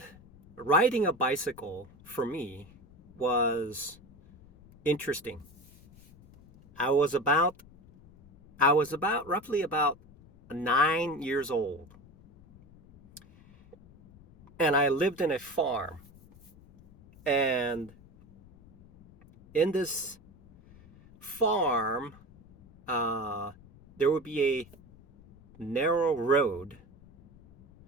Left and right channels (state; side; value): noise; left; rumble, 24 dB below the sound